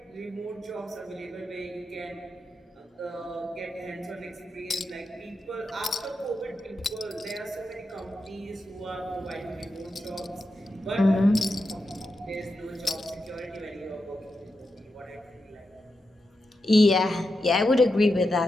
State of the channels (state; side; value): normal; both; correlation 0.88